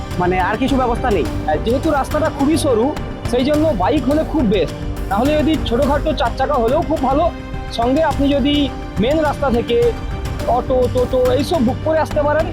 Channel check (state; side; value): identical; both; correlation 1.00